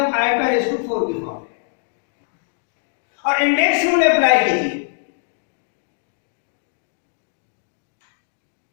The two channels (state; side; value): silent; right; digital silence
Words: आयोटा रेज टू 4 की फॉर्म में और इंडेक्स रूल अप्लाई कीजिए।